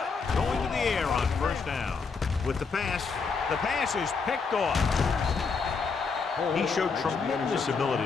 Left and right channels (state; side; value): quieter; right; 5.0 dB